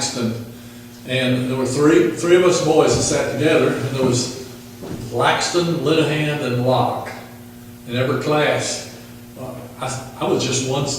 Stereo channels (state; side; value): identical; both; correlation 1.00